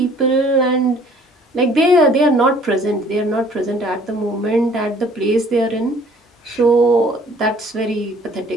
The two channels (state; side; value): normal; both; correlation 0.56